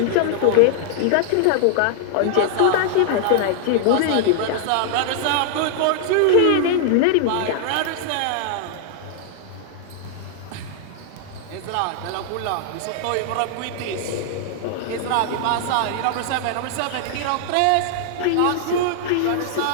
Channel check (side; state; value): both; different; correlation -0.01